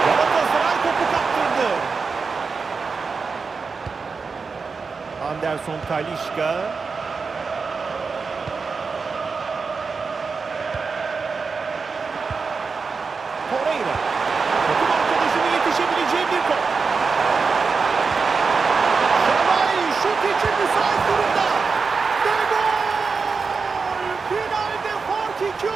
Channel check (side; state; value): left; quieter; 4.8 dB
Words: Galatasaray topu kaptırdı. Anderson Talisca. Torreira. Takım arkadaşının yetişebileceği bir top. Şalay şut için müsait durumda. Ve gol! Finalde fark 2